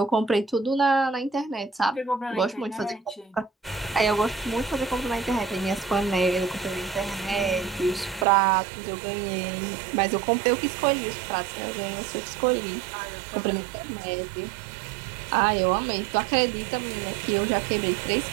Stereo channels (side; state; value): left; drops out; at 8.2 s